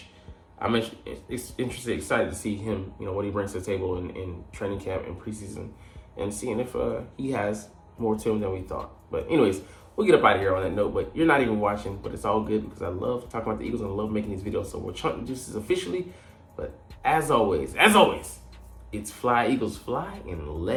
I'm excited to see him, what he brings to the table in training camp and preseason, and seeing if he has more to him than we thought. But anyways, we'll get up out of here on that note. But you're not even watching, but it's all good because I love talking about the Eagles and I love making these videos. So we're chunking juices officially. But as always, it's fly, Eagles fly, and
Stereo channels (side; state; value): both; identical; correlation 1.00